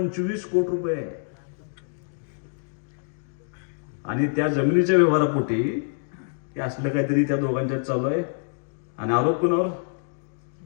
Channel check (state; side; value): silent; right; digital silence